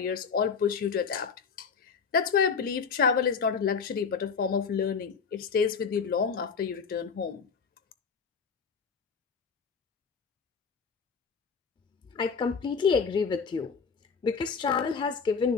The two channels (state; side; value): quieter; right; 5.7 dB